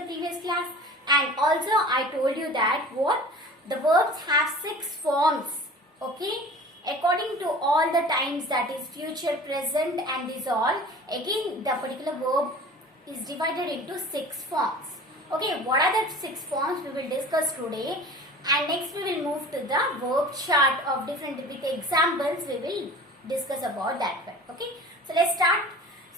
previous class. And also I told you that what? The verbs have 6 forms. Okay, according to all the times, that is future, present and these all, again the particular verb is divided into 6 forms. Okay, what are the 6 forms we will discuss today, and next we will move to the verb chart of different with the examples we will discuss about that one. Okay, so let's start.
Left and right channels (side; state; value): both; normal; correlation 0.41